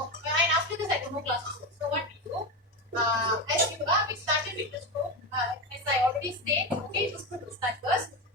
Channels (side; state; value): both; normal; correlation 0.16